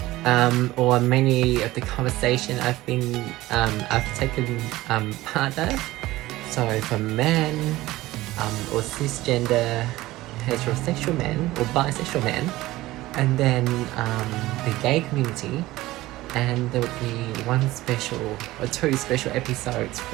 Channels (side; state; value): left; quieter; 17.6 dB